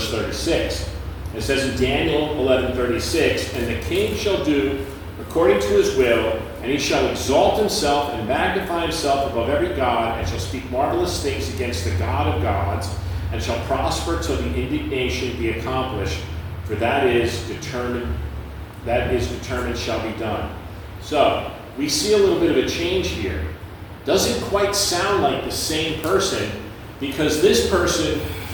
36. It says in Daniel 11:36, and the king shall do according to his will, and he shall exalt himself and magnify himself above every god, and shall speak marvelous things against the God of gods, and shall prosper till the indignation be accomplished, for that is determined shall be done. So we see a little bit of a change here. Doesn't quite sound like the same person, because this person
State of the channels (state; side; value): identical; both; correlation 1.00